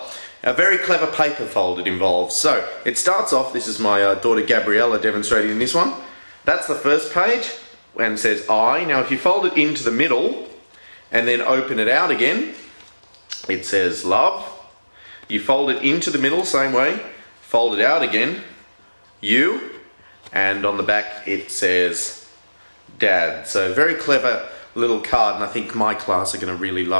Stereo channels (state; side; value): inverted; both; correlation -1.00